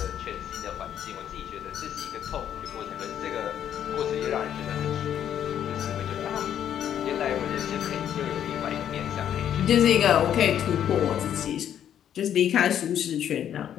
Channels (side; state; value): right; quieter; 9.9 dB